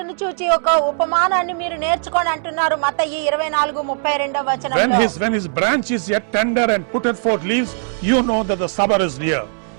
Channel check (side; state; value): left; silent; 67 dB below the other